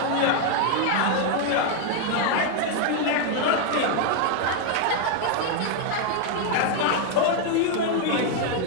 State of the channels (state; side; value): different; both; correlation 0.01